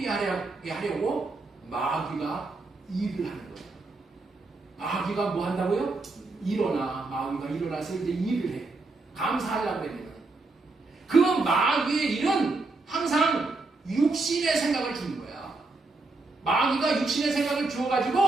하려고 마귀가 일을 하는 거예요. 마귀가 뭐 한다고요? 마귀가 일어나서 이제 일을 해. 감사하려고 하면 그 마귀의 일은 항상 육신의 생각을 주는 거야. 마귀가 육신의 생각을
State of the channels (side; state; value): left; quieter; 3.4 dB